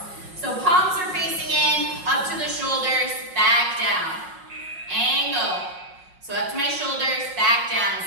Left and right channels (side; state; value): left; late; 5.5 ms